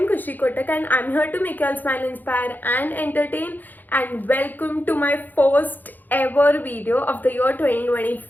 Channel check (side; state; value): right; late; 0.086 ms